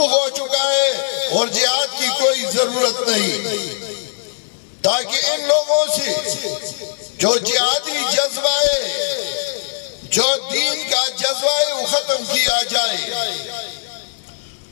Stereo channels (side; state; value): right; silent; digital silence